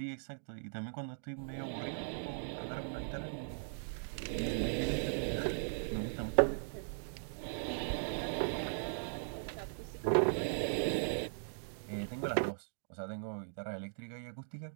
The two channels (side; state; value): left; silent; digital silence